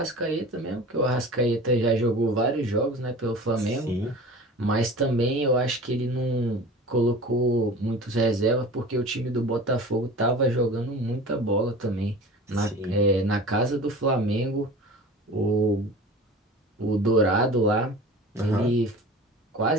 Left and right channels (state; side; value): normal; both; correlation 0.38